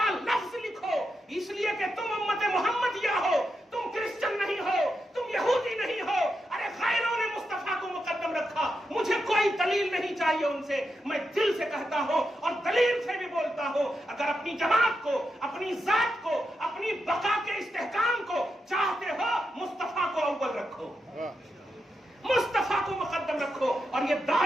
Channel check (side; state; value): both; normal; correlation 0.86